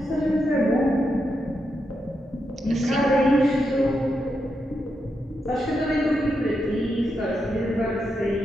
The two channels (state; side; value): normal; both; correlation 0.84